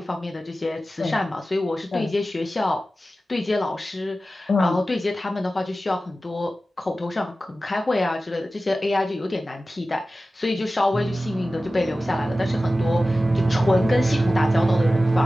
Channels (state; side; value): normal; both; correlation 0.95